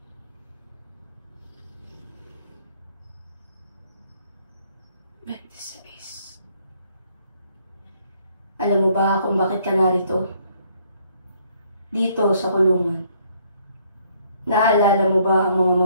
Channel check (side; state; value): both; inverted; correlation -0.66